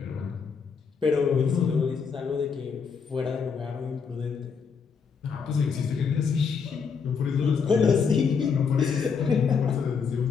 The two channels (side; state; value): right; quieter; 5.9 dB